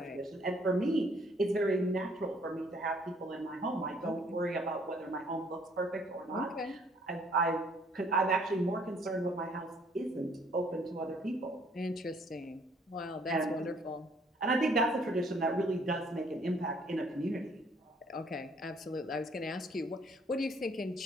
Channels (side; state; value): both; normal; correlation 0.62